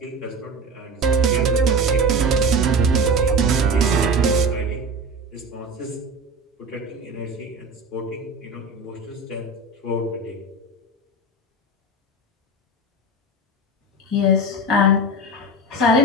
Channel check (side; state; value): both; normal; correlation 0.29